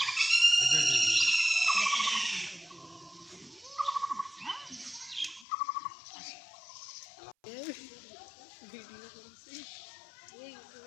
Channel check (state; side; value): drops out; right; at 5.5 s